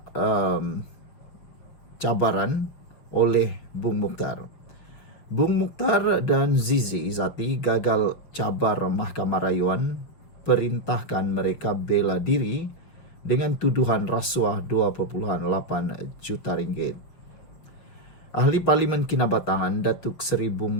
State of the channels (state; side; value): late; right; 6.2 ms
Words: cabaran oleh Bung Mukhtar. Bung Mukhtar dan Zizi Izzati gagal cabar Mahkamah Rayuan, perintahkan mereka bela diri dengan tuduhan rasuah 2.8 juta ringgit. Ahli Parlimen Kinabatangan Datuk Seri